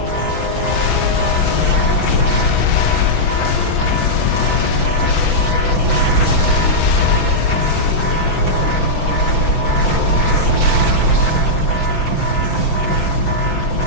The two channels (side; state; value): right; late; 5.9 ms